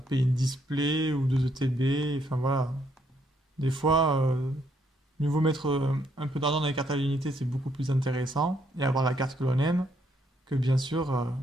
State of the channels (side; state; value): both; normal; correlation 0.72